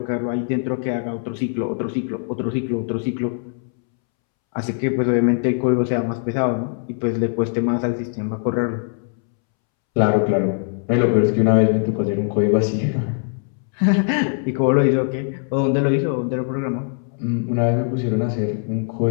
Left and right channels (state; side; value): silent; right; 65 dB below the other